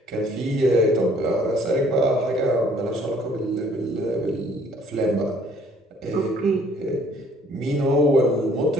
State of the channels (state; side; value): normal; both; correlation 0.60